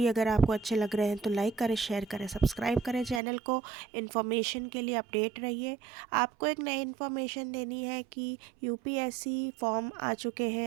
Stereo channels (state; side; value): drops out; left; at 3.2 s